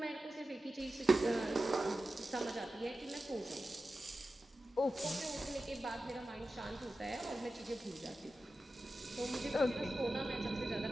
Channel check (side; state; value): both; normal; correlation 0.93